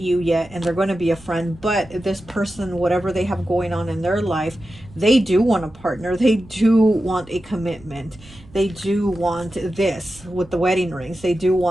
yet and they're going to be a friend. But this person, whatever they have going on in their life, they do want a partner. They do want a commitment. They do want this with the wedding rings. They do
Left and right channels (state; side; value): noise; right; rumble, 22 dB below the sound